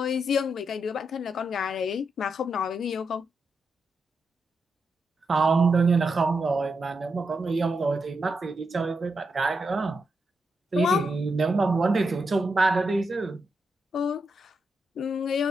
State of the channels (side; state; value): both; normal; correlation 0.84